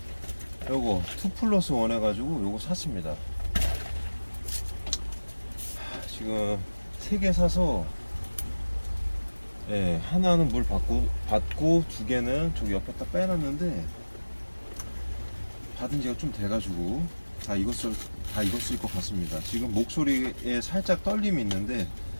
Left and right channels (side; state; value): both; inverted; correlation -1.00